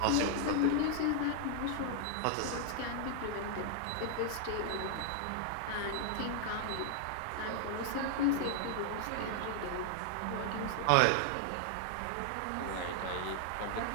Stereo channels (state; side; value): different; both; correlation 0.00